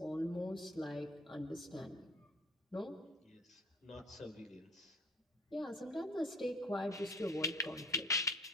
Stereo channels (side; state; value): both; normal; correlation 0.47